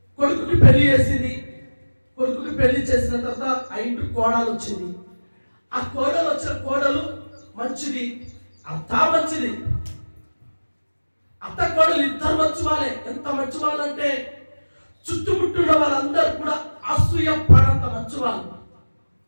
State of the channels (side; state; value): both; inverted; correlation -1.00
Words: కొడుకుకి పెళ్లి చేసింది. కొడుకుకి పెళ్లి చేసిన తర్వాత ఆ ఇంటి కోడలు వచ్చింది. ఆ కోడలు వచ్చిన కోడలు మంచిది, అత్త మంచిది. అత్త కోడలు ఇద్దరు మంచి వాళ్ళే. ఎంత మంచి వాళ్ళు అంటే చుట్టుముట్టున్న వాళ్ళందరూ కూడా అసూయ పడంత మంచివాళ్ళు,